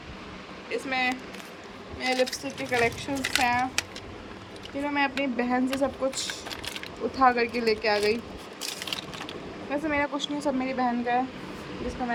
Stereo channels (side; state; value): both; identical; correlation 1.00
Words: इसमें मेरे लिपस्टिक के कलेक्शंस हैं, फिर मैं अपनी बहन से सब कुछ उठा करके लेके आ गई। वैसे मेरा कुछ नहीं, सब मेरी बहन का है, जिसको